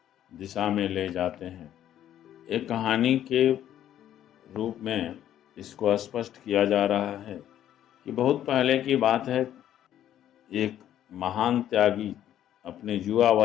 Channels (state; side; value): quieter; right; 11.3 dB